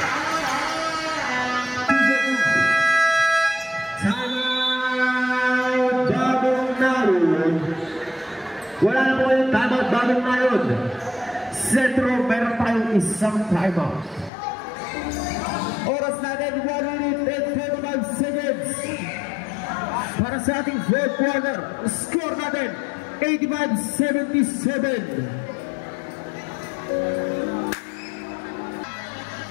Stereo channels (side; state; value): right; drops out; at 14.3 s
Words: Timeout, bagong naroon. Wala na po yung timeout, bagong naroon. Sentro, meron tayong isang timeout. Oras natin, 1 minute and 45 seconds. Para sa ating fourth quarter, score natin, 85-77.